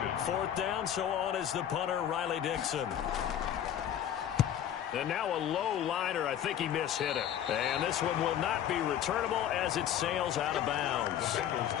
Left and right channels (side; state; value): right; quieter; 10.2 dB